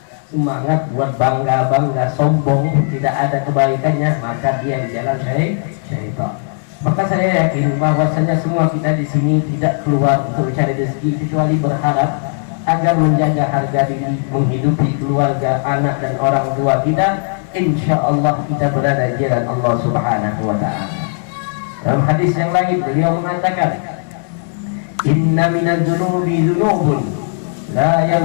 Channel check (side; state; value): right; silent; digital silence